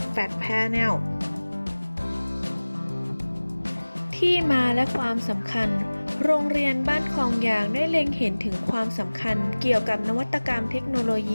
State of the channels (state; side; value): inverted; both; correlation -1.00